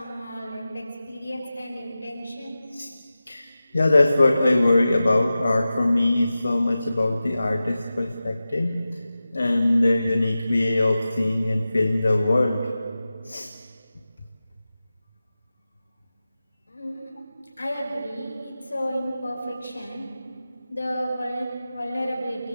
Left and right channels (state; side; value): inverted; both; correlation -0.95